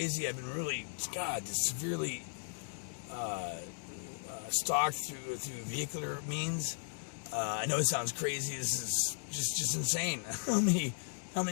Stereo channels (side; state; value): right; silent; digital silence